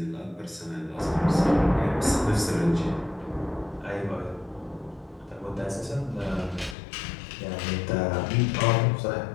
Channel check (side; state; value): right; drops out; at 6.8 s